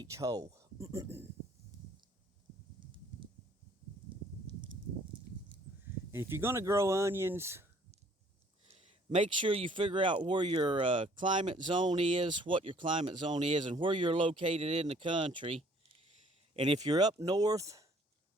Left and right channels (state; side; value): normal; both; correlation 0.59